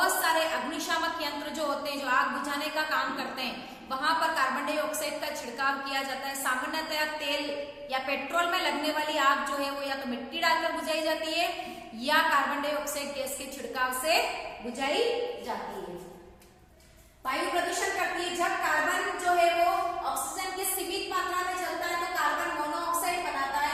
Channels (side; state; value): both; identical; correlation 1.00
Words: सारे अग्निशामक यंत्र जो होते हैं जो आग बुझाने का काम करते हैं वहां पर कार्बन डाइऑक्साइड का छिड़काव किया जाता है। सामान्यतया तेल या पेट्रोल में लगने वाली आग जो है वो या तो मिट्टी डालकर बुझाई जाती है या कार्बन डाइऑक्साइड गैस के छिड़काव से बुझाई जाती है। वायु प्रदूषण करती है। जब कार्बन जो है वो ऑक्सीजन के सीमित मात्रा में चलता है तो कार्बन मोनोऑक्साइड बनाता